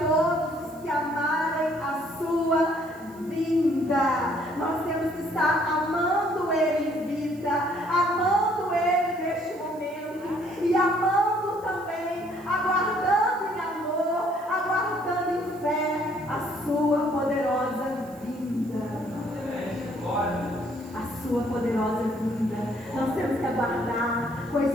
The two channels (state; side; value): noise; right; hiss, 26 dB below the sound